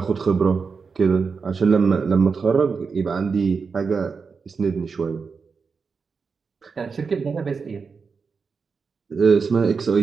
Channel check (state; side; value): quieter; left; 5.2 dB